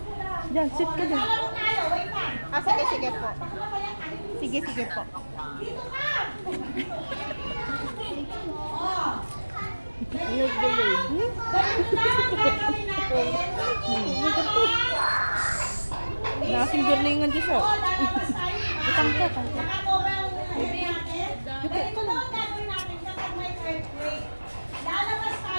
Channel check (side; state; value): both; inverted; correlation -1.00